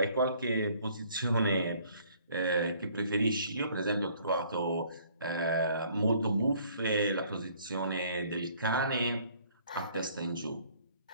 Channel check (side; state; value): both; inverted; correlation -0.59